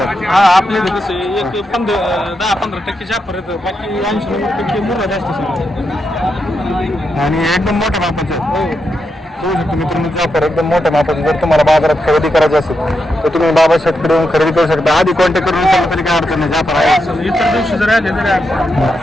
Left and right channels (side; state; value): both; normal; correlation 0.84